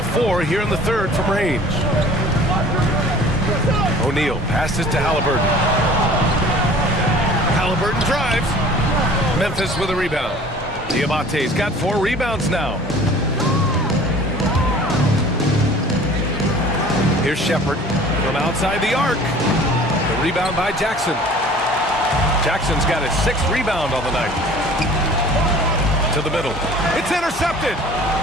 4 here in the third from range. O'Neal passes to Halliburton. Halliburton drives. Memphis with a rebound. Diabate's got 4 rebounds now. Here's Shepard from outside the arc. The rebound by Jackson. Jackson's got his 6th rebound on the night. To the middle. It's intercepted.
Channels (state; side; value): normal; both; correlation 0.47